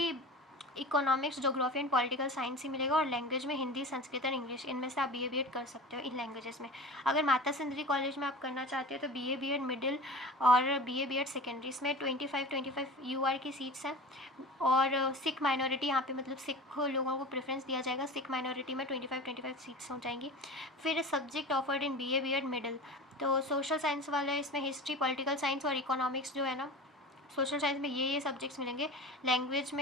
economics, geography and political science ही मिलेगा, और लैंग्वेज में हिंदी, संस्कृत और इंग्लिश, इनमें से आप BA-BEd कर सकते हो इन लैंग्वेजेस में। अगर माता सुंदरी कॉलेज में आप करना चाहते हो तो BA-BEd मिडिल और BA-BEd सेकेंडरी, इसमें 25 UR की सीट्स हैं। और सिख माइनॉरिटी यहाँ पे मतलब सिख लोगों को प्रेफरेंस दिया जाएगा, सिख माइनॉरिटी में 25 सीट्स हो जाएंगी। फिर सब्जेक्ट ऑफर्ड इन BA-BEd मिडिल, तो सोशल साइंस वाले इसमें हिस्ट्री, पॉलिटिकल साइंस और इकोनॉमिक्स जो है ना, सोशल साइंस में ये सब्जेक्ट्स मिलेंगे। लैंग्वेज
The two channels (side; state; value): both; normal; correlation 0.34